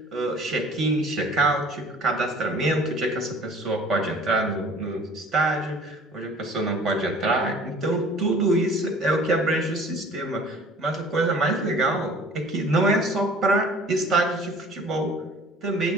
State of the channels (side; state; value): both; normal; correlation 0.49